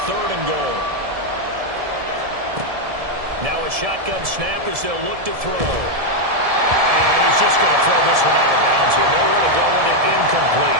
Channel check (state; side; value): late; left; 1.7 ms